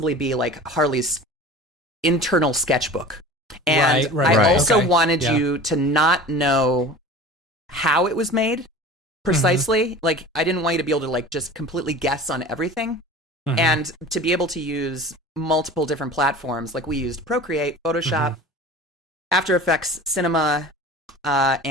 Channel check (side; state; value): both; normal; correlation 0.38